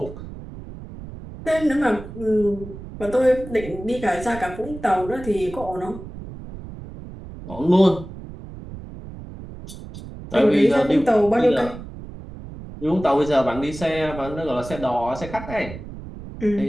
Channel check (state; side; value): noise; right; rumble, 13 dB below the sound